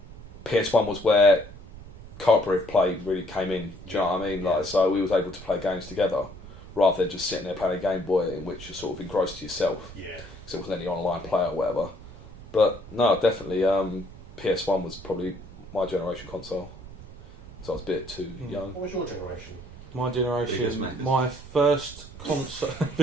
PS1 was where cooperative play really came in. Do you know what I mean? Like, so we was able to play games together rather than just sitting there playing a Game Boy in which you're sort of engrossed to yourself. Yeah. Because there wasn't any online play or whatever. But no, definitely PS1 was probably my generation console. So I was a bit too young. What was your generation? My Biggest generation, Maccas. my first console. Are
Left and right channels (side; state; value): right; noise; rumble, 16 dB below the sound